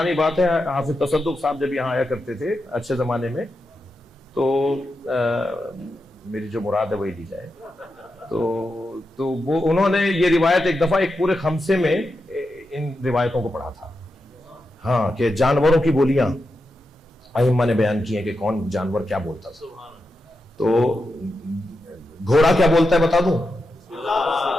بات ہے، حافظ تصدق صاحب جب یہاں آیا کرتے تھے اچھے زمانے میں، تو میری جو مراد ہے وہی لی جائے، تو وہ انہوں نے یہ روایت ایک دفعہ ایک پورے خمسے میں ان روایتوں کو پڑھا تھا، ہاں، کہ جانوروں کی بولیاں ائمہ نے بیان کی ہیں کہ کون جانور کیا بولتا تھا۔ تو گھوڑا کیا بولتا ہے بتا دوں؟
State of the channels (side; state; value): both; normal; correlation 0.88